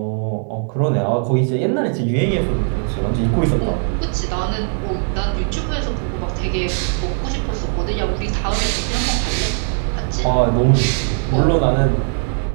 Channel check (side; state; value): left; silent; 58 dB below the other